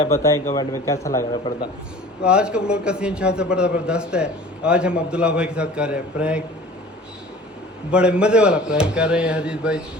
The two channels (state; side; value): normal; both; correlation 0.44